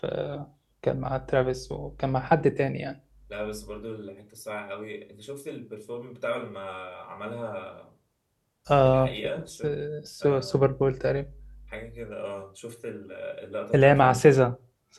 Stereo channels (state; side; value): identical; both; correlation 1.00